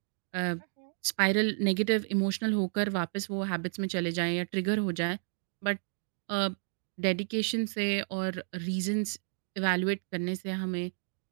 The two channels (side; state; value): left; silent; digital silence